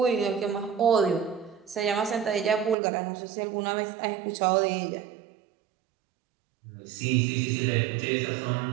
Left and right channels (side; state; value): left; drops out; at 2.8 s